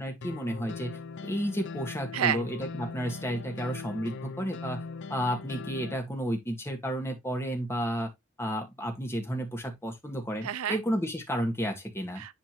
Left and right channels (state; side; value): normal; both; correlation 0.63